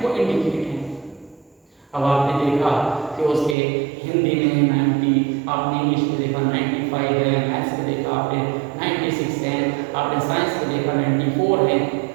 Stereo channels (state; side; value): drops out; left; at 3.6 s